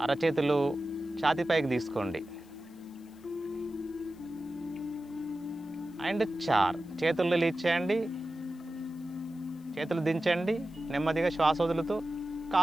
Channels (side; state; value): left; noise; hiss, 30 dB below the sound